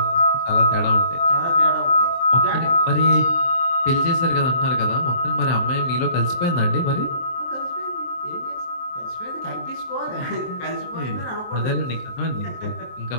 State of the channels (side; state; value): right; late; 23 ms